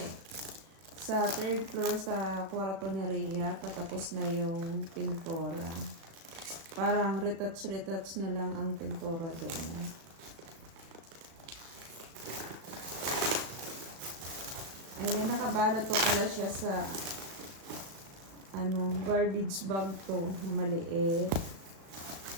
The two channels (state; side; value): late; left; 36 ms